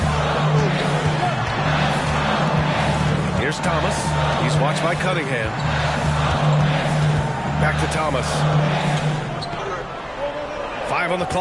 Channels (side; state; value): both; identical; correlation 1.00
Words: Here's Thomas. He's watched by Cunningham. Back to Thomas. 5 on the